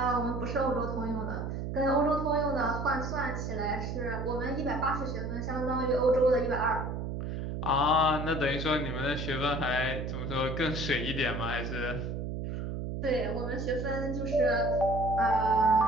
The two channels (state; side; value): noise; right; hum, 4 dB below the sound